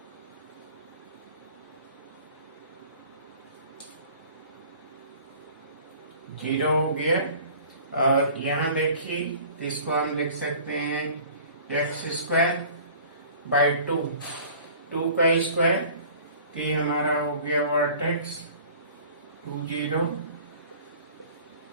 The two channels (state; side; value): inverted; both; correlation -0.47